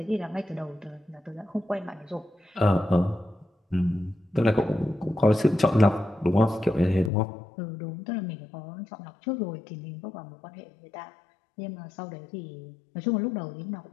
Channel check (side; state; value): right; drops out; at 7.1 s